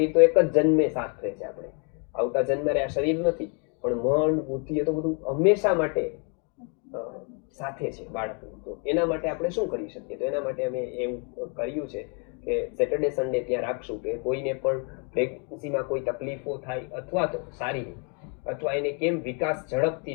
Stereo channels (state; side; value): quieter; right; 37.6 dB